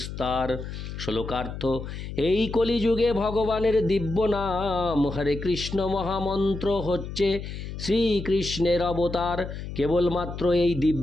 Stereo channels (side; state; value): left; noise; hum, 8 dB below the sound